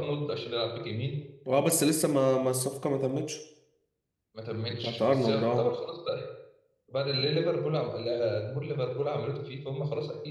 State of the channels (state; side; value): identical; both; correlation 1.00